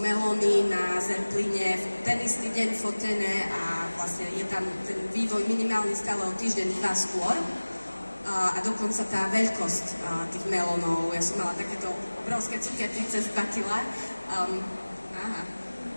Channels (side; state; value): both; inverted; correlation -1.00